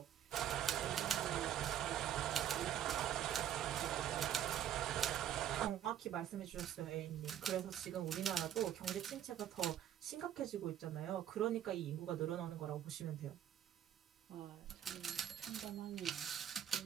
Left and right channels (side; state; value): left; quieter; 10.4 dB